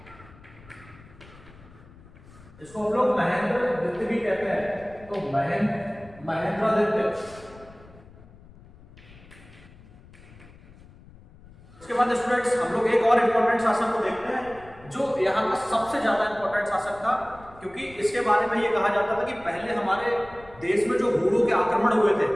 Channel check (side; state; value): left; noise; rumble, 22 dB below the sound